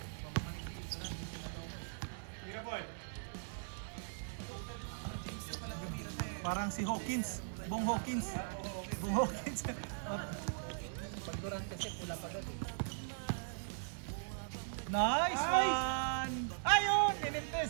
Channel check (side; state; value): left; silent; digital silence